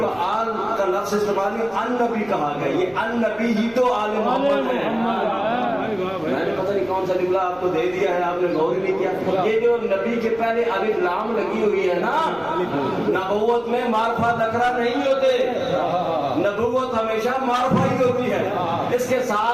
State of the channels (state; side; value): noise; left; rumble, 25 dB below the sound